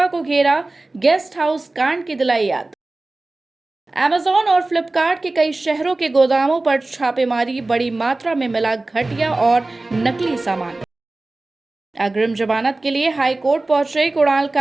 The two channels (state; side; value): quieter; left; 3.0 dB